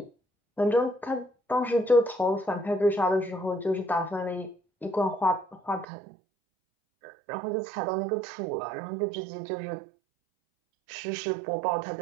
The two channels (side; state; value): left; drops out; at 5.9 s